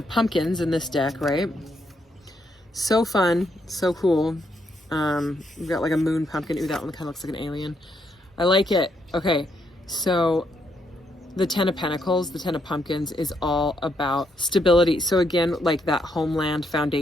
Pumpkins in this deck, right? So fun, so cool. We've got like a moon pumpkin. Ooh, that one kind of looks like an alien. I like it. Okay, so the 10 of Pentacles, the 10 of Pumpkins is all about stability. So again, like that homeland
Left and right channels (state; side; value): normal; both; correlation 0.76